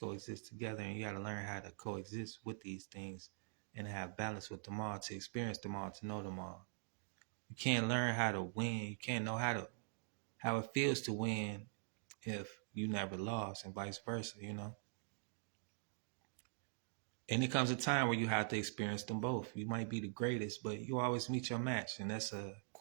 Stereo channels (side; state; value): left; silent; digital silence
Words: together, and you got to learn how to coexist with these things and have balance with them all, to experience them all, to know them all. You can't learn how to win. You can't know how it feels to win if you never lost, and vice versa. And it comes a time where you have to experience them both. You might be the greatest, but you always meet your match. And that's a